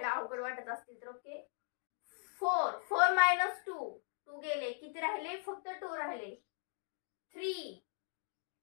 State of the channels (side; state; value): right; silent; digital silence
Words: अवघड वाटत असतील तर. ओके, 4 मायनस 2 गेले, किती राहिले, फक्त 2 राहिले.